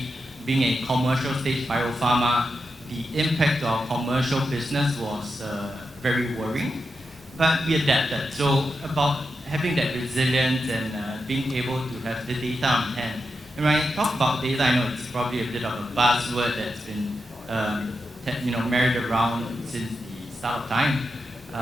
being a commercial stage biopharma, the impact of our commercial business was very worrying, but we adapted. So about having that resilience and being able to have the data on hand. And when I talk about data, I know it's probably a bit of a buzzword that's been married around since the start of time.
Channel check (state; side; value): normal; both; correlation 0.88